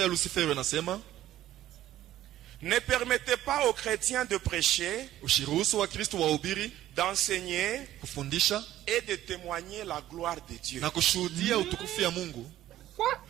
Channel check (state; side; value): quieter; left; 13.5 dB